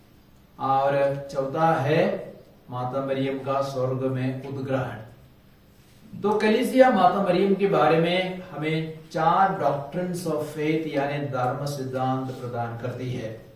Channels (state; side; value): identical; both; correlation 1.00